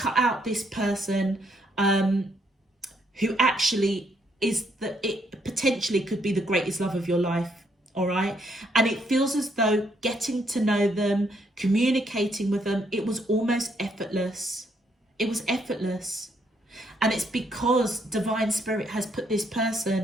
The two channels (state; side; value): normal; both; correlation 0.72